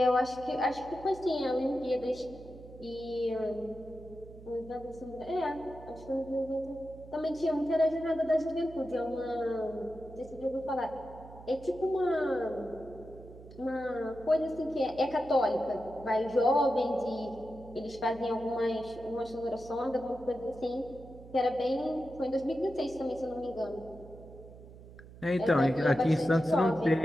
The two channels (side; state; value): right; noise; hum, 18 dB below the sound